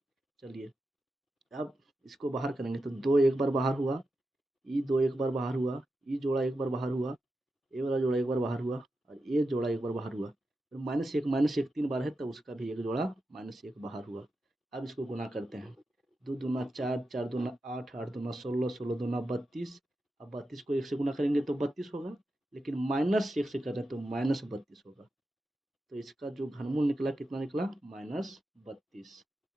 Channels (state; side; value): normal; both; correlation 0.89